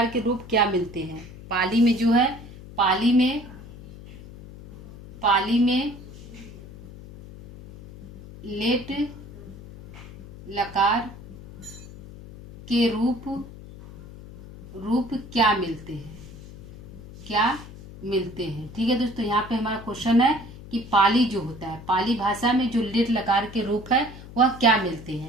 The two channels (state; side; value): noise; left; hum, 16 dB below the sound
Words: के रूप क्या मिलते हैं, पाली में जो है पाली में लेट लकार के रूप क्या मिलते हैं। ठीक है दोस्तों, यहाँ पे हमारा क्वेश्चन है कि पाली जो होता है, पाली भाषा में जो लेट लकार के रूप है वह क्या मिलते